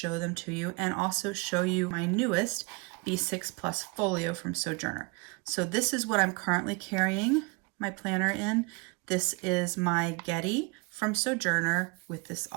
them to you, and also show you my newest B6 Plus folio from Sojourner. So this is what I'm currently carrying my planner in. This is my Getty from Sojourner with this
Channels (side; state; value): left; quieter; 28.9 dB